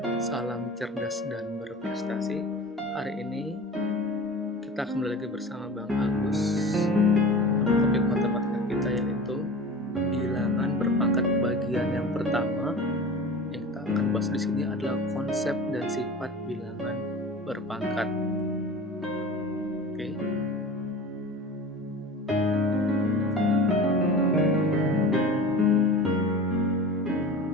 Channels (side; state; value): both; normal; correlation 0.35